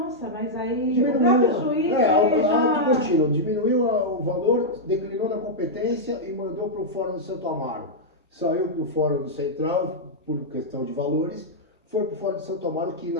mas aí Diminuiu, o próprio juiz auto contínuo, diminuiu o valor, declinou na competência e mandou para o Fórum do Santo Amaro. Saiu do Fórum do Central por questão de valores, foi para Fora de Santo Amaro, que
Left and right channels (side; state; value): both; normal; correlation -0.06